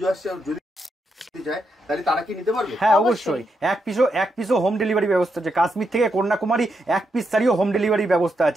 আসছে, যদি যায় তাহলে তারা কি নিতে পারবে? হ্যাঁ অবশ্যই। এক পিসও হোম ডেলিভারি ব্যবস্থা আছে। কাশ্মীর থেকে কন্যাকুমারী এক পিস শাড়িও হোম ডেলিভারি ব্যবস্থা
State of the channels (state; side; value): normal; both; correlation 0.82